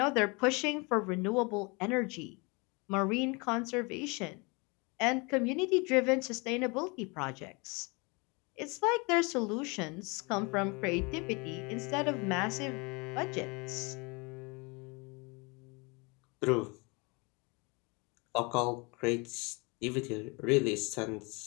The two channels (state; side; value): quieter; right; 29.0 dB